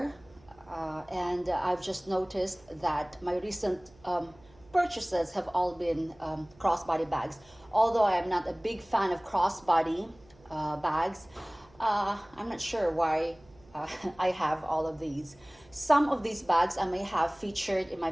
and I've just noticed that my recent purchases have all been crossbody bags. Although I am not a big fan of crossbody bags, I'm not sure why I have all of these. Some of these bags I may have featured in my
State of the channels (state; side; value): noise; right; hum, 27 dB below the sound